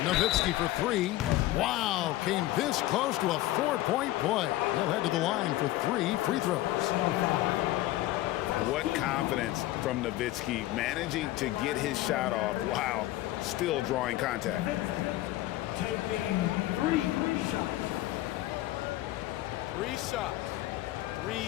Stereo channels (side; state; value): right; quieter; 16.1 dB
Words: Nowitzki for 3. Wow, came this close to a 4-point play. He'll head to the line for 3 free throws. What confidence from Nowitzki, managing to get his shot off while still drawing contact. Taking 3 shots. 3 shots.